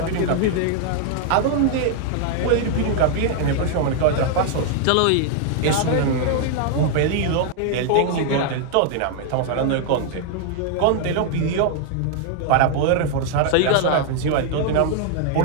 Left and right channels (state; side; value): different; both; correlation 0.00